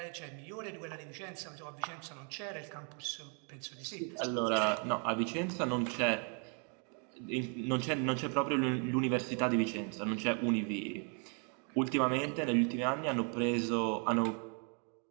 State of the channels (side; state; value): left; quieter; 39.3 dB